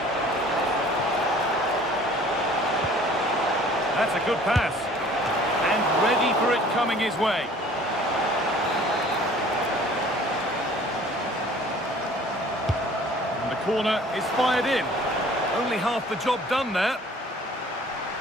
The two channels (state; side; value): normal; both; correlation 0.51